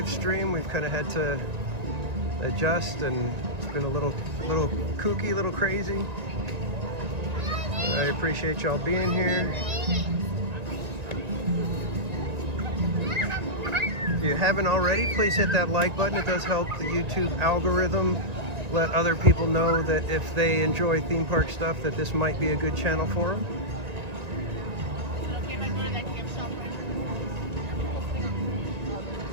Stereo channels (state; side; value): late; left; 1.9 ms